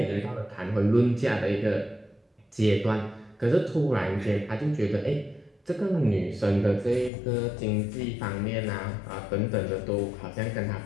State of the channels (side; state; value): right; drops out; at 7.1 s